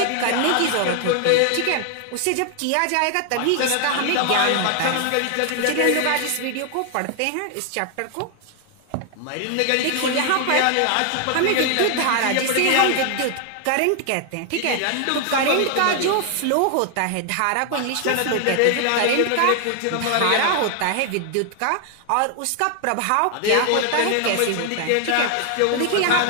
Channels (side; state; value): both; different; correlation 0.00